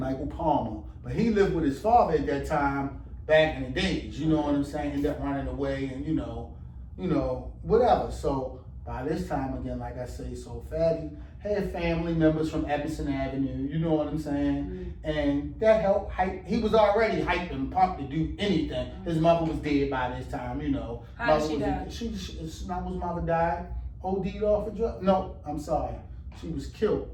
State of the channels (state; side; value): identical; both; correlation 1.00